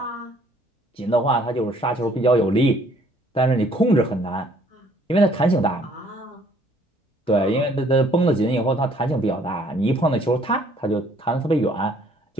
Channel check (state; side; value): normal; both; correlation 0.61